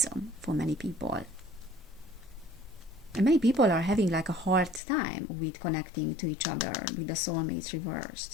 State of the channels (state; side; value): drops out; right; at 4.8 s